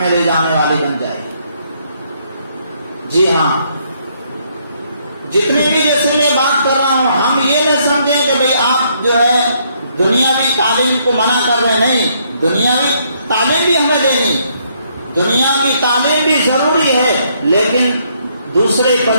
لے جانے والی بن جائے۔ جی ہاں، جتنی بھی جیسے میں بات کر رہا ہوں، ہم یہ نہ سمجھیں کہ بھئی آپ جو ہے دنیاوی تعلیم کو منع کر رہے، نہیں، دنیاوی تعلیم بھی ہمیں دینی، دنیا کی تعلیم بھی ضروری ہے، لیکن دوسرے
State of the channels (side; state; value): both; inverted; correlation -0.70